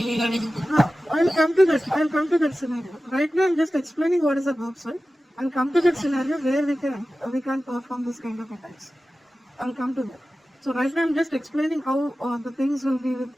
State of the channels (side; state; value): both; normal; correlation 0.95